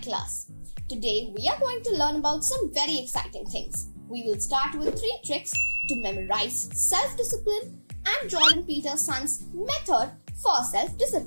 class. Today we are going to learn about some very exciting things. We will start with 3 tricks to memorize self-discipline and Jordan Peterson's method for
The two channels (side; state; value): both; inverted; correlation -1.00